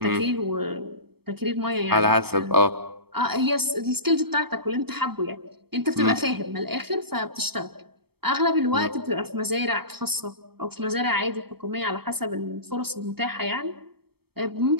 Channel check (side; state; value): left; late; 0.96 ms